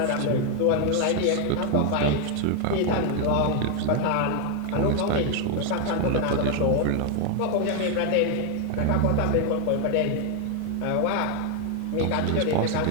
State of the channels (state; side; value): different; both; correlation 0.01